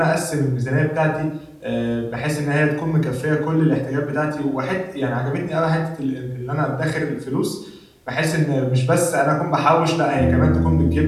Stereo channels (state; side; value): identical; both; correlation 1.00